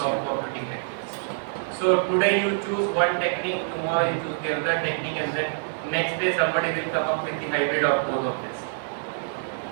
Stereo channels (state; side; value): silent; left; digital silence